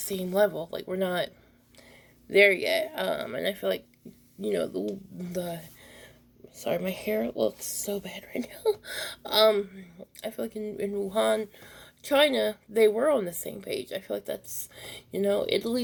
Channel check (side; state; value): both; identical; correlation 1.00